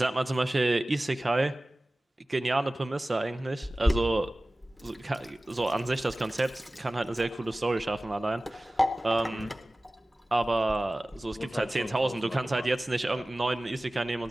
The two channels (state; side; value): normal; both; correlation 0.97